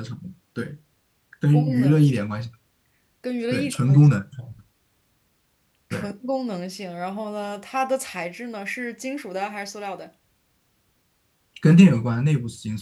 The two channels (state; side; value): identical; both; correlation 1.00